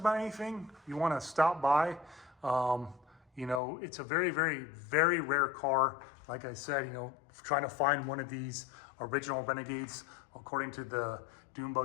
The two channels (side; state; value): right; drops out; at 3.6 s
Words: anything, you want to stop by. You know, it's a very, very, very rare car. Like I said, you know, trying to find one of these original Renegades, according to the Dune